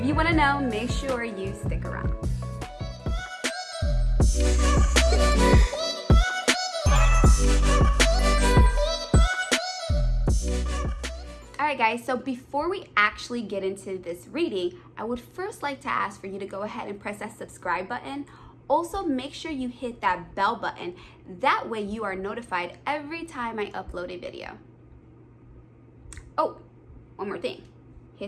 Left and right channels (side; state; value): both; identical; correlation 1.00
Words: you want to know, make sure you stick around. Alright guys, so before we actually get into this reading, I would first like to ask for you to go ahead and press that subscribe button. Also, make sure you hit that bell button. That way you are notified every time I upload a video. Oh, one more thing.